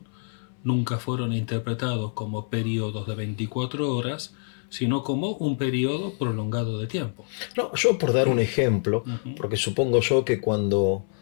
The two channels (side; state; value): right; silent; 61 dB below the other